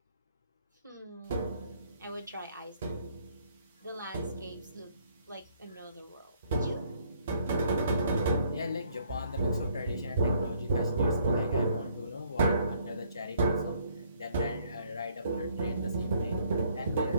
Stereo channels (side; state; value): both; inverted; correlation -0.65